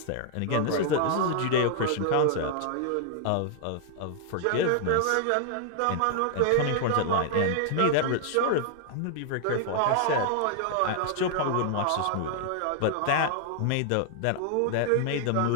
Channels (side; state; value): both; different; correlation 0.00